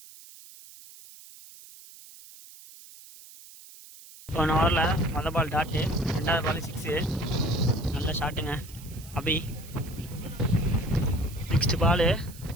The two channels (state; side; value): noise; right; hiss, 19 dB below the sound